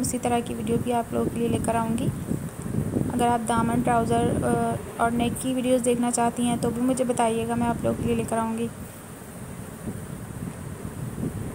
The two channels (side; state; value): both; identical; correlation 1.00